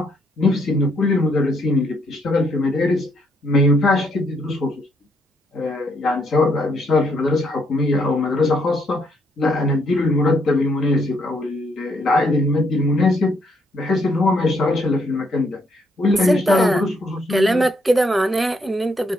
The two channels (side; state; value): both; normal; correlation 0.73